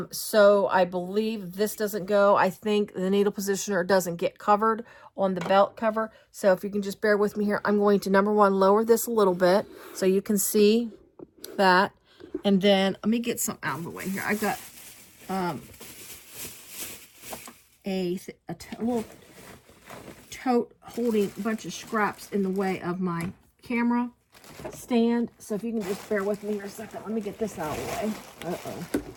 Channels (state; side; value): identical; both; correlation 1.00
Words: So I believe this doesn't go. I think the needle positioner doesn't get covered on the belt cover. So if you can just bear with me here, I'm going to, number one, lower this a little bit so you can see that. And then let me get some out of the way here. I've got a little tote holding a bunch of scraps in the way of my camera stand. So if you can just bear with me here a second, let me get this out of the way. Uh-oh.